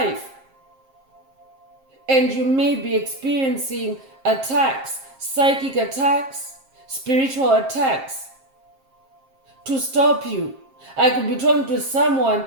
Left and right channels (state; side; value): late; left; 7.5 ms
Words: And you may be experiencing attacks, psychic attacks, spiritual attacks to stop you. I could be talking to someone